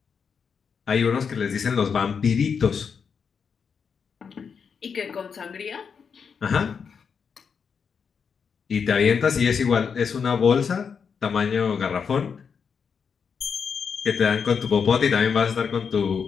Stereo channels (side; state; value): right; quieter; 6.3 dB